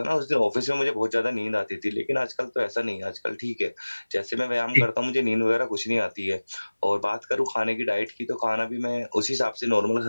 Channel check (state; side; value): inverted; both; correlation -1.00